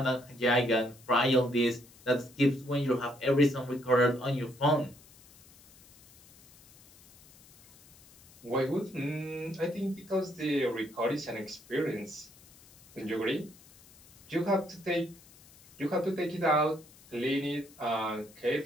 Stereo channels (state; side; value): noise; left; hiss, 25 dB below the sound